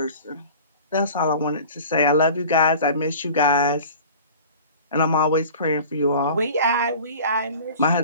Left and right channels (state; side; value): inverted; both; correlation -0.41